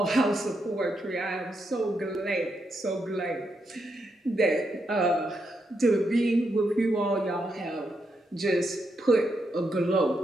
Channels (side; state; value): both; normal; correlation 0.81